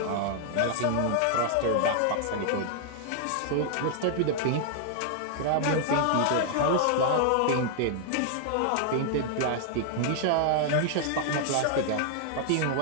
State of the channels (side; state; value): both; different; correlation -0.01